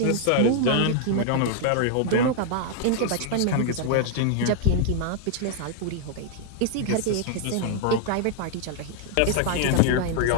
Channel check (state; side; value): different; both; correlation 0.00